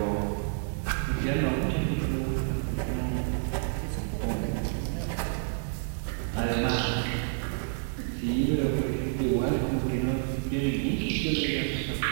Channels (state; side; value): silent; left; 58 dB below the other